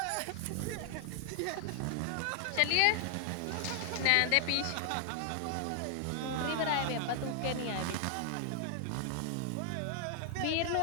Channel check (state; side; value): different; both; correlation 0.00